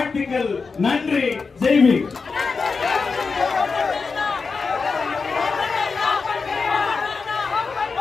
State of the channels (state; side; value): quieter; right; 4.7 dB